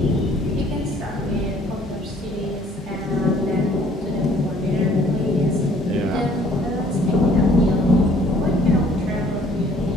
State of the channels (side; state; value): both; normal; correlation 0.58